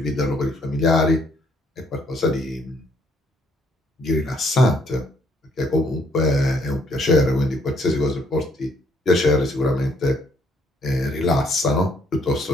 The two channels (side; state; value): both; normal; correlation 0.68